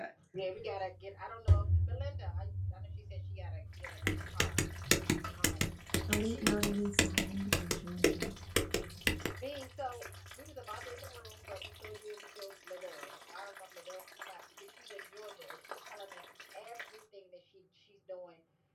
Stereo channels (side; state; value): both; identical; correlation 1.00